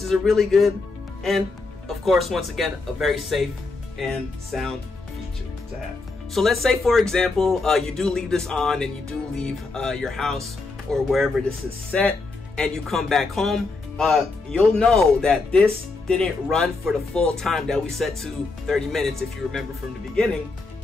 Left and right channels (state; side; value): quieter; right; 3.7 dB